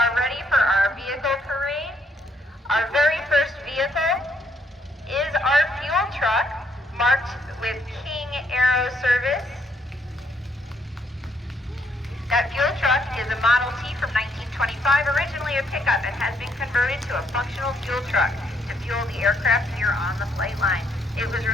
ready for our vehicle parade. Our very first vehicle is our fuel truck, marked with King Aero Service. That fuel truck is a Model T from 1925, originally a pickup, and has been converted to a functional fuel truck to fuel the aircraft here on the flight line. It was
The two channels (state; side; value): normal; both; correlation 0.71